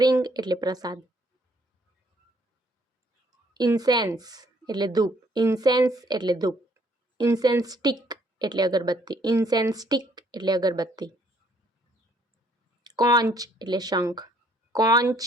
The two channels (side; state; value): both; normal; correlation 0.64